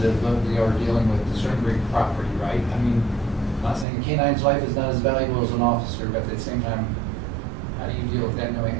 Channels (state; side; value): drops out; left; at 3.9 s